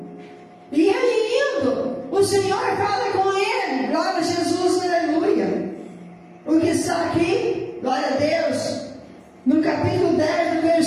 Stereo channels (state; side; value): identical; both; correlation 1.00